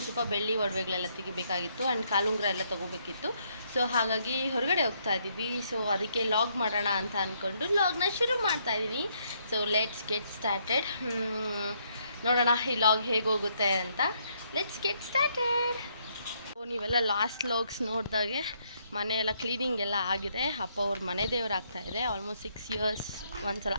ಸ್ವಲ್ಪ ಬೆಳ್ಳಿ ಒಡವೆಗಳೆಲ್ಲ ತೆಗಿಬೇಕಾಗಿತ್ತು ಆ್ಯಂಡ್ ಕಾಲುಂಗ್ರ ಎಲ್ಲ ತೊಗೋಬೇಕಿತ್ತು. ಸೊ ಹಾಗಾಗಿ ಹೊರಗಡೆ ಹೋಗ್ತಾ ಇದ್ದೀವಿ. ಸೊ ಅದಕ್ಕೆ ಲಾಗ್ ಮಾಡೋಣ ಅಂತ ಅಂದ್ಕೊಂಡು ಲಾಗ್ನ ಶುರು ಮಾಡ್ತಾ ಇದ್ದೀನಿ. So let's get started. ನೋಡೋಣ ಈ ಲಾಗ್ ಹೇಗೆ ಹೋಗುತ್ತೆ ಅಂತ. Let's get started. ನೀವೆಲ್ಲ ಲಾಸ್ಟ್ ಲಾಗ್ಸ್ ನೋಡಿದಾಗೆ ಮನೆಯೆಲ್ಲ ಕ್ಲೀನಿಂಗ್ ಎಲ್ಲ ಆಗಿದೆ. ಅಪ್ಪ ಅವ್ರ ಮನೆ ದೇವ್ರು ಆಗ್ತಾಯಿದೆ. ಆಲ್ಮೋಸ್ಟ್ 6 ಇಯರ್ಸ್ ಒಂದ್ಸಲ,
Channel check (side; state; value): both; inverted; correlation -0.72